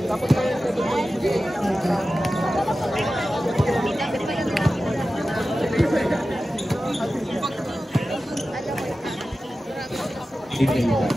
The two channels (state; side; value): normal; both; correlation 0.94